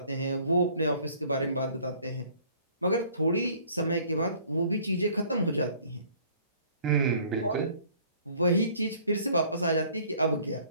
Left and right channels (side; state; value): both; inverted; correlation -0.56